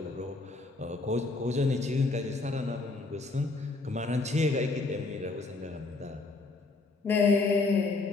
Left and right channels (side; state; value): right; quieter; 3.5 dB